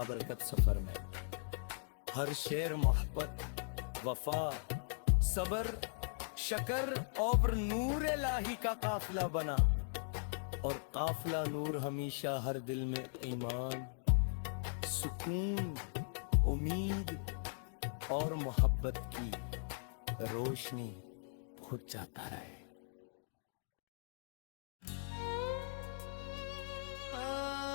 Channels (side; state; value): right; silent; digital silence